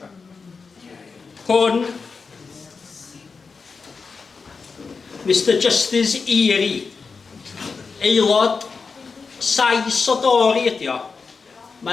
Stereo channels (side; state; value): right; quieter; 4.9 dB